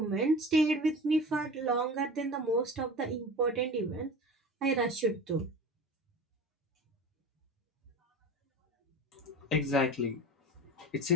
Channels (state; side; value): normal; both; correlation 0.35